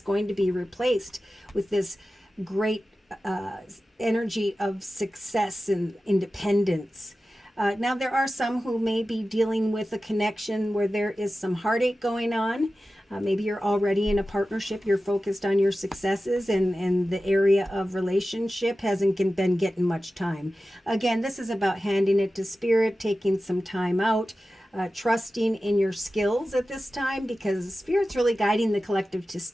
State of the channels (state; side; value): normal; both; correlation 0.94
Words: going to be replaced with this great energy of success and independence. Now, there are some who may be dealing with a connection where there is some heartache going on. Maybe you're already in a partnership, you're focused on your successes, and the area of relationship hasn't been getting much time. Again, this is about handing it to Spirit, taking some time out, trusting in your skills at this time, because Spirit's really guiding the collective to